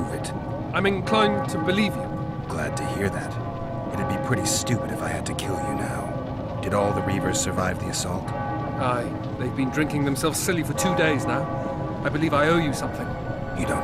it. I'm inclined to believe you. Glad to hear that. It'd be pretty stupid if I had to kill you now. Did all the Reavers survive the assault? Aye, they've been drinking themselves silly for 2 days now. I believe I owe you something. You don't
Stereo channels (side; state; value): both; identical; correlation 1.00